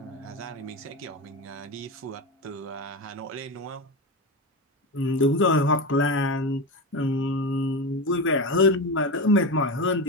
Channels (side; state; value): both; normal; correlation 0.19